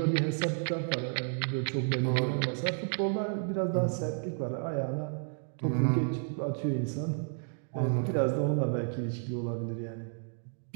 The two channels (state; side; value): silent; left; 57 dB below the other